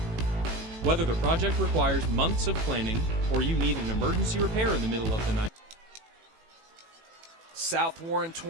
Whether the project requires months of planning or you need an emergency repair in the middle of the night. South Warren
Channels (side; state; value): left; late; 18 ms